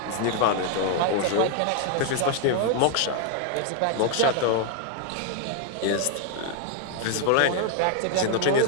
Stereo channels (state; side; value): different; both; correlation 0.00